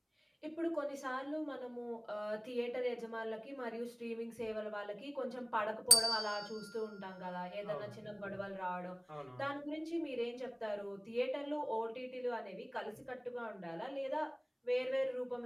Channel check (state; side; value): identical; both; correlation 1.00